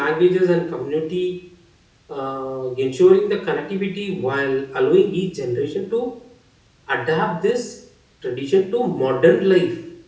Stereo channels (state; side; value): identical; both; correlation 1.00